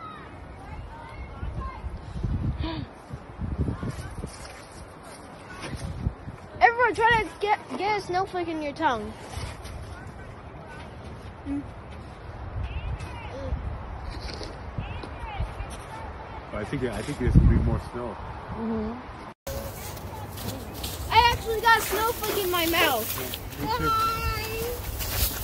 Everyone try to get a snowflake in your tongue. I think there's gonna be more snow. I actually got a snowflake in my mouth.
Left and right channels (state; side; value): identical; both; correlation 1.00